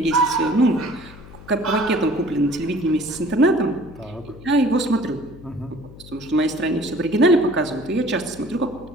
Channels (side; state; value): left; noise; hum, 18 dB below the sound